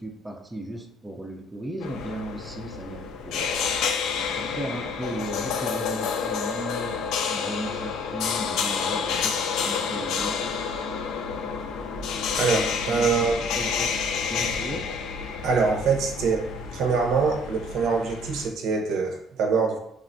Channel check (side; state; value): both; normal; correlation 0.55